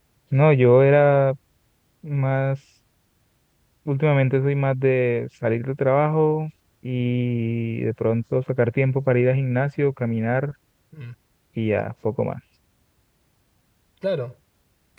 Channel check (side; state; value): both; identical; correlation 1.00